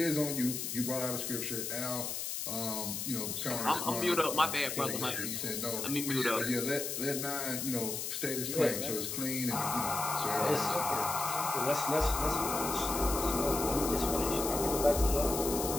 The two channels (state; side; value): noise; left; hiss, 3 dB below the sound